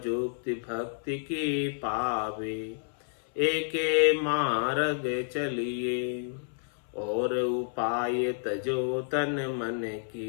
भक्ति की पावे, एके मार्ग चलिए। और उपाय तजो तन मन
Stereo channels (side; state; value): right; silent; 58 dB below the other